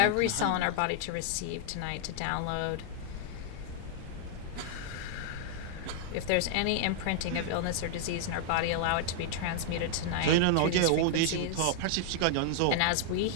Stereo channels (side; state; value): both; different; correlation -0.01